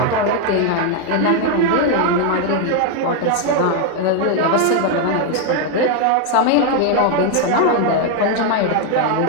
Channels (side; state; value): both; different; correlation 0.01